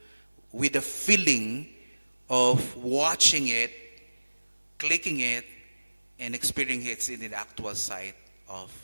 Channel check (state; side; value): inverted; both; correlation -1.00